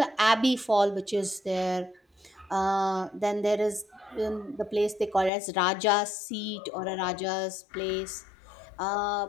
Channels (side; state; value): right; drops out; at 5.3 s